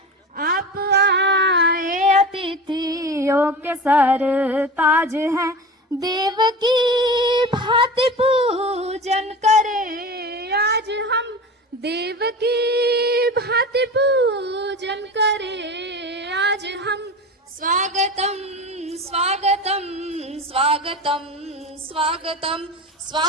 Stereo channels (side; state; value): both; normal; correlation 0.31